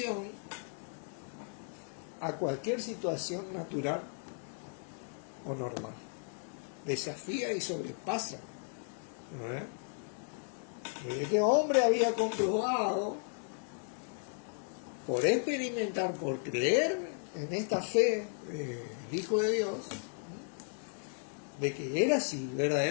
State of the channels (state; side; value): silent; right; 54 dB below the other